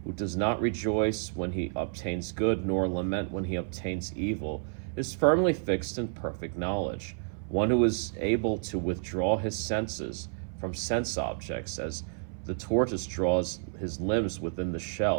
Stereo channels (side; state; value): left; silent; 58 dB below the other